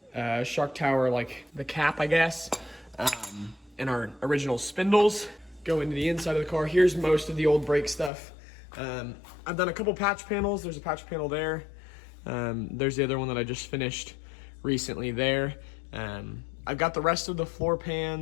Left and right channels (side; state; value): right; drops out; at 8.1 s